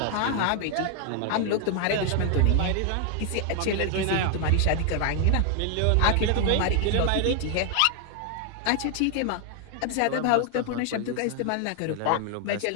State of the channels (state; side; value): different; both; correlation 0.00